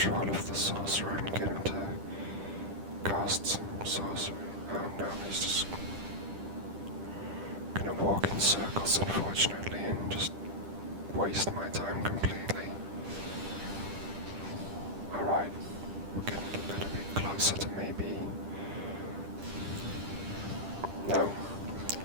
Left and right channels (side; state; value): left; late; 10 ms